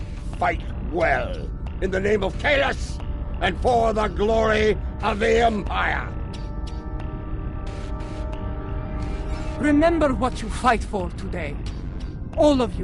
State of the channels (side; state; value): both; identical; correlation 1.00